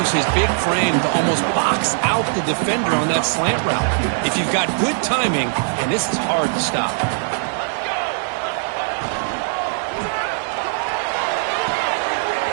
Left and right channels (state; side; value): silent; left; digital silence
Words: his big frame to almost box out the defender on that slant route. If you've got good timing, and this is hard to stop.